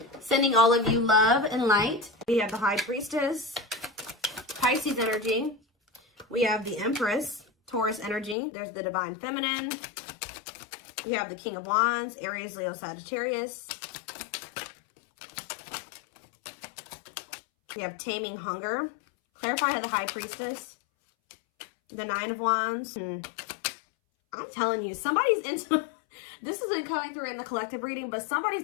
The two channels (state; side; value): drops out; right; at 8.3 s